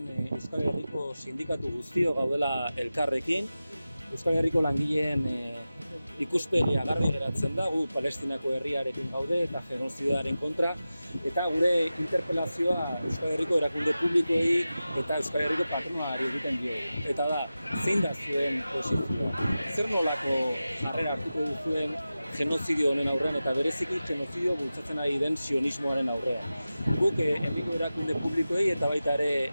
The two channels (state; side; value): inverted; both; correlation -0.94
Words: Euskal Herriko sindikatu guztio gaudela elkarrekin. Euskal Herriko langileen ikuspegia garbi geratzen da, gu Palestinako herriarekin gaude eta genozidoaren kontra, eta gure interpelazioa Euskal Herriko erakunde publikoei eta Euskal Herriko patronalari egiten diogu. Eta da, zein da zuen posizioa? Zer nolako jarrera hartuko duzuen genozidio honen aurrean eta bereziki genozidio bultzatzen ari den sionismoaren aurrean. Guk herriko erakunde publikoei eta baita ere